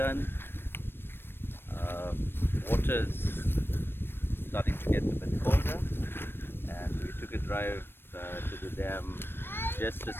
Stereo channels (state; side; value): late; right; 0.10 ms